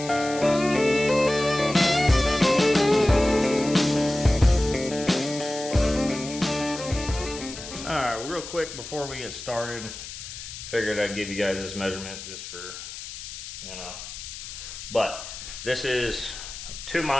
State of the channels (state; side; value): noise; left; hiss, 11 dB below the sound